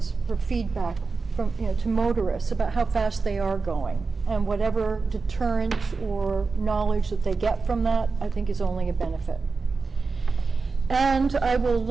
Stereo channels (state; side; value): quieter; left; 4.4 dB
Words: for feedback from, to motorists about how fast they are going, and whatever deterrent or knowledge that they get from that, I think is only a benefit. And I will